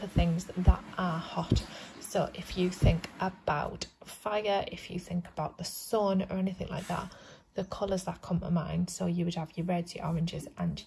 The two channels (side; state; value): both; identical; correlation 1.00